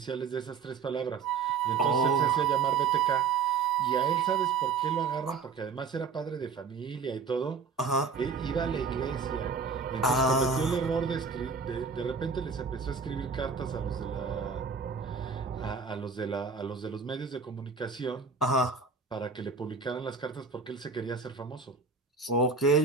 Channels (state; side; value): quieter; left; 5.2 dB